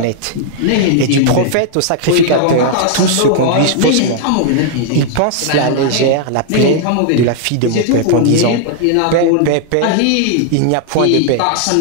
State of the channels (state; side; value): different; both; correlation 0.00